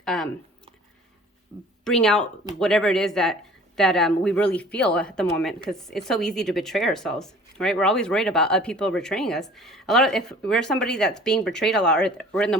bring out whatever it is that we really feel at the moment, because it's so easy to betray ourselves, right? We're always worried about people betraying us. If we're somebody that's being betrayed a lot, or we're in the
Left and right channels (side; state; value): both; normal; correlation 0.48